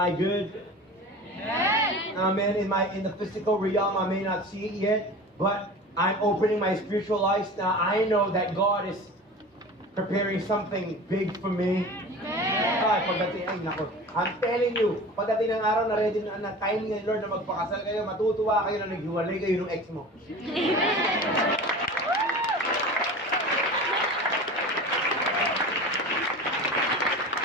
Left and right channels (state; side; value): normal; both; correlation 0.35